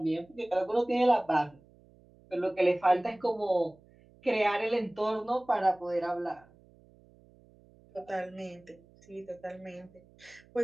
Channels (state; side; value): noise; right; hum, 27 dB below the sound